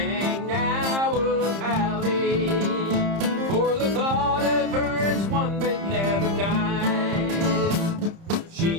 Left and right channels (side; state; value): left; late; 30 ms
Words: now of Hallie, for the thought of her is one that never dies.